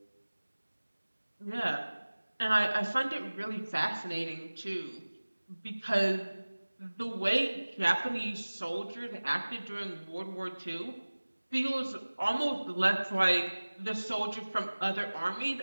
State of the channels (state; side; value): inverted; both; correlation -1.00